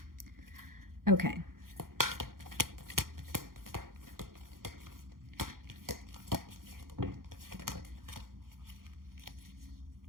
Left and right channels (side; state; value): left; late; 0.92 ms